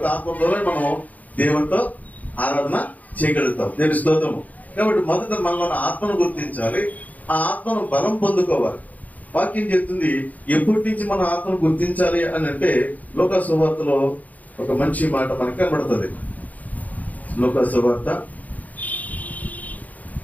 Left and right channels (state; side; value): late; right; 0.077 ms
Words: ఆత్మ ద్వారానే మనం దేవునితో ఆరాధన చేయగలుగుతాం. దేవుని స్తోత్రము. కాబట్టి మొదట మనలో ఆత్మను గుర్తించాలి. ఆ ఆత్మను బలం పొందుకోవాలి. వాక్యం చెప్తుంది ఎప్పటి నుంచి మనం ఆత్మను గుర్తించాలి అని అంటే లోకా సువార్తలో ఒక మంచి మాట మనకి కనబడుతుంది. లోకా సువార్త